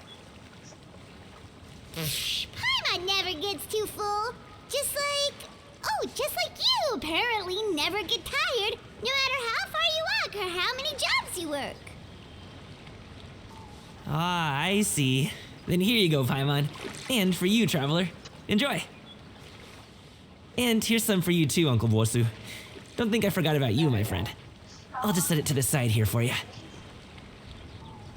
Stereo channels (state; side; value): identical; both; correlation 1.00